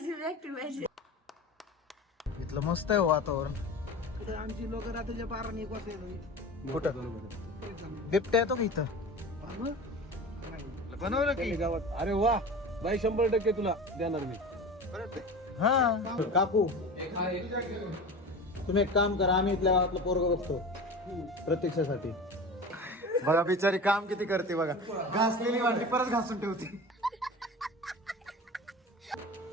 व्यक्ती पाहिजे. इथलं मस्त आहे वातावरण. इथं आमची लोक रात्रीच्या 12-1 वाजता येतात. कुठं बिबट्या येतो का इथं? बनवलं की गावात. अरे वा बाई, 100% तुला देणार मी. हा. काकू तुम्ही एक काम करा, आम्ही इथल्या गावातलं पोरग बघतो प्रतीक्षेसाठी. बघा बिचारी काम किती करते बघा. घासलेली वाटी परत घासून ठेवते.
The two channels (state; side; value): normal; both; correlation 0.33